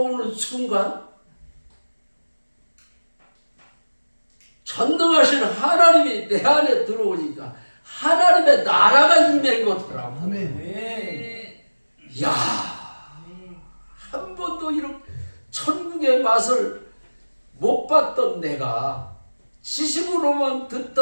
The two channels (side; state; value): both; inverted; correlation -1.00